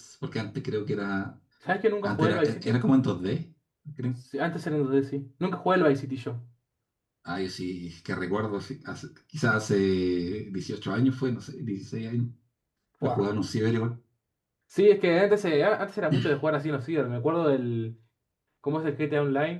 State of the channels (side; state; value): both; identical; correlation 1.00